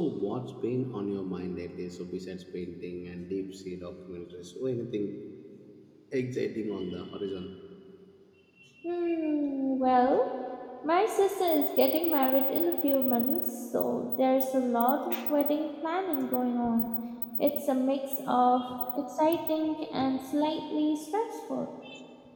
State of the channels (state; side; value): identical; both; correlation 1.00